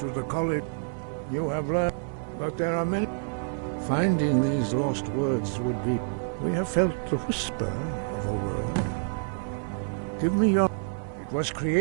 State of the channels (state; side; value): silent; left; 59 dB below the other